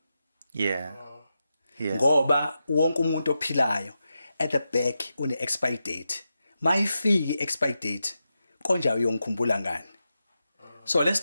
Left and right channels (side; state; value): both; inverted; correlation -0.89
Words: Yeah. Yes. Ngoba wonke umuntu ophilayo at the back une expire date. Mayifiki expire date, konja uyongikhumbula ngani. So let's